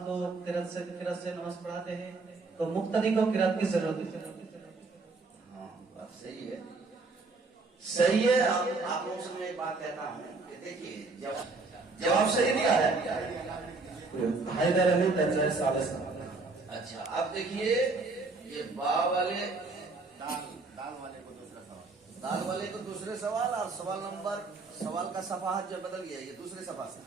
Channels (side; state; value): left; quieter; 3.8 dB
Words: को किरात से नमाज पढ़ाते हैं तो मुक्तदी को किरात की जरूरत है। हाँ, बात सही है, सही है। आप लोगों से मैं एक बात कहता हूँ कि देखिए, जवाब सही दिया है। हैदर अली तंजय सालस। अच्छा, अब देखिए ये बा वाले दाल वाले को दूसरा सवाल। दाल वाले को दूसरे सवाल और सवाल का सफाहत जो बदल गया, ये दूसरे सफा से